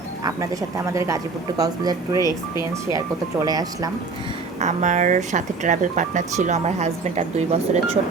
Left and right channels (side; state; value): left; quieter; 4.2 dB